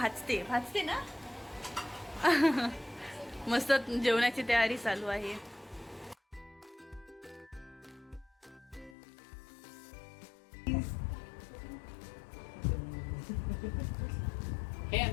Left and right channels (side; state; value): right; drops out; at 9.0 s